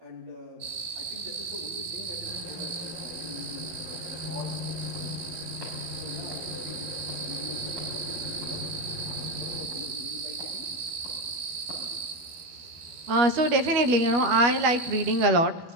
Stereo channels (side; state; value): left; late; 12 ms